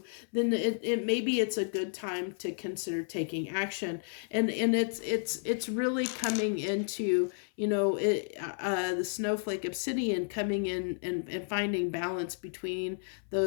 then it maybe it's a good time to consider taking action. And it's really coming into, you know, the snowflake obsidian coming in and finding balance between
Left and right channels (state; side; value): silent; right; 57 dB below the other